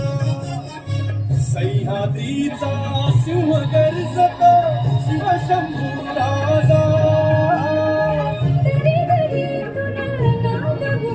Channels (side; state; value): both; identical; correlation 1.00